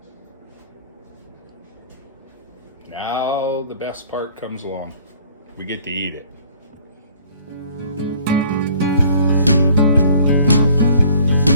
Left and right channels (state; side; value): inverted; both; correlation -0.54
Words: Now the best part comes along. We get to eat it.